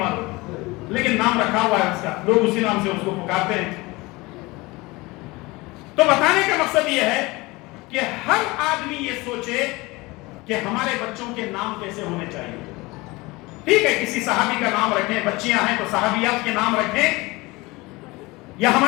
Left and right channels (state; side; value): quieter; right; 22.7 dB